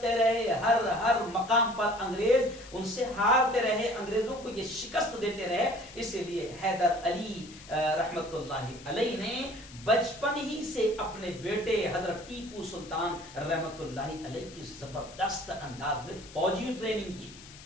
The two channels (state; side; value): noise; left; hiss, 18 dB below the sound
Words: رہے. ہر مقام پر انگریز ان سے ہارتے رہے, انگریزوں کو یہ شکست دیتے رہے. اسی لیے حیدر علی رحمت اللہ علیہ نے بچپن ہی سے اپنے بیٹے حضرت ٹیپو سلطان رحمت اللہ علیہ کی زبردست انداز میں فوجی ٹریننگ کی تھی,